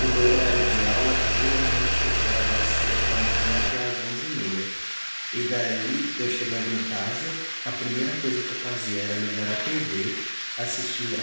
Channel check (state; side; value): inverted; both; correlation -1.00